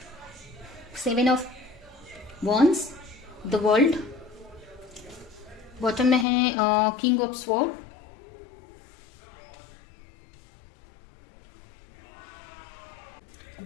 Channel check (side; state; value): right; drops out; at 6.2 s